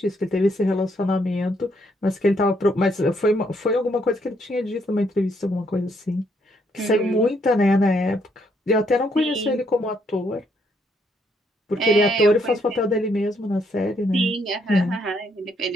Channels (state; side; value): normal; both; correlation 0.72